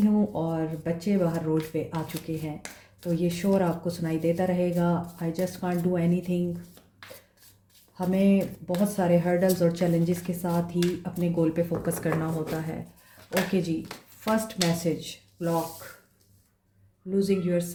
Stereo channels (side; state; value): both; identical; correlation 1.00